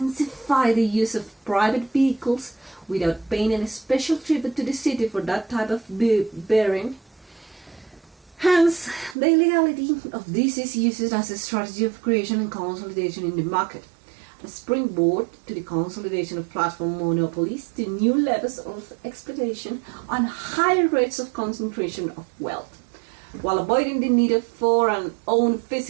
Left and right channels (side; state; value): left; drops out; at 9.2 s